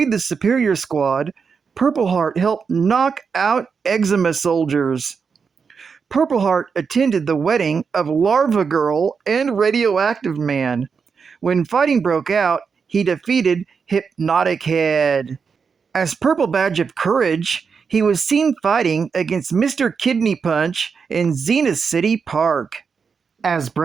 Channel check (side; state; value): left; quieter; 5.7 dB